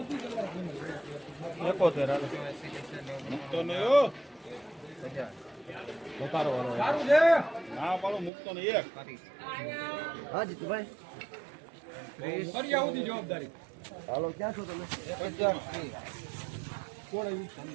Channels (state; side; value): drops out; left; at 8.3 s